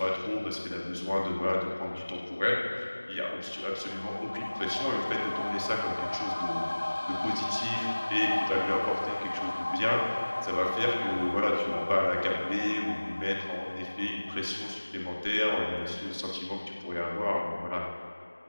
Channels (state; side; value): inverted; both; correlation -1.00